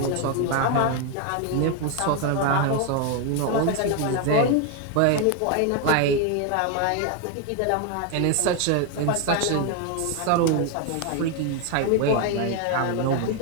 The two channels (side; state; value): both; different; correlation 0.01